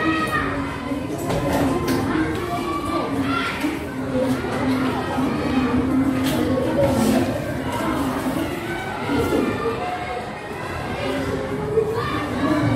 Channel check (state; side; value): identical; both; correlation 1.00